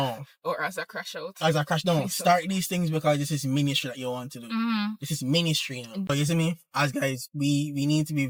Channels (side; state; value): both; identical; correlation 1.00